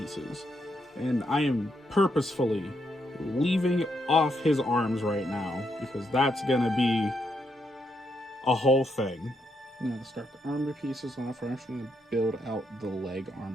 And I am purposefully leaving off his arms right now, because that's going to be a whole thing. Now to start the armor pieces off, we're actually going to build out the leg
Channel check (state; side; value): normal; both; correlation 0.78